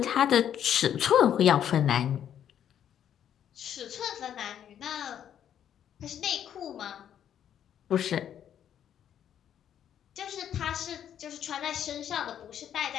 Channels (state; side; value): quieter; right; 9.7 dB